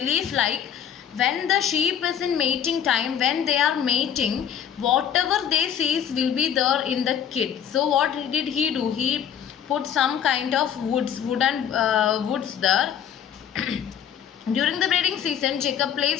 like when the sheep is in mating time, when they are mating, whatever they sees will be there in the kid. So what did he do? He put some kind of wooden woods there. During the breeding season, Jacob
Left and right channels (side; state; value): right; quieter; 8.9 dB